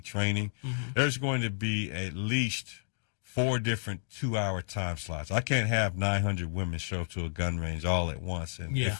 training, mm-hmm. there's going to be at least 4 different 2-hour time slots. I can't have 900 women show up to a gun range all at once and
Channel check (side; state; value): right; silent; digital silence